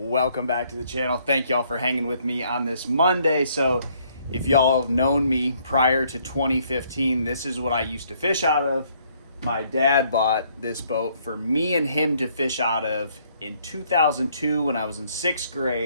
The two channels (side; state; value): both; inverted; correlation -0.67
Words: back to the channel. Thank y'all for hanging with me on this Monday. So if y'all have known me prior to 2015, this is what I used to fish out of. My dad bought this boat for me and him to fish out of in 2002 when I was in 6th